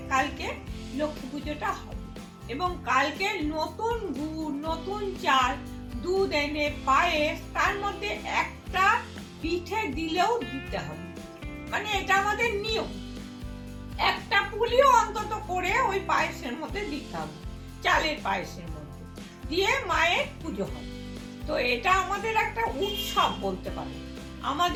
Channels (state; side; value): identical; both; correlation 1.00